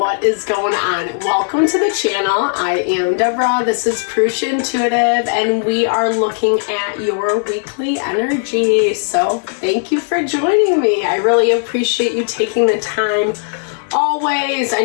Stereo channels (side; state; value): right; silent; digital silence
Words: is going on? Welcome to the channel. I am Deborah. This is Purusha Intuitive, and we are looking at your weekly energy. So thank you for joining me. I really appreciate you taking the time always. I